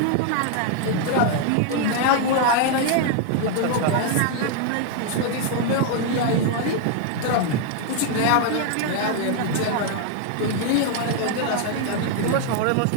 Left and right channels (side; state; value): both; different; correlation 0.00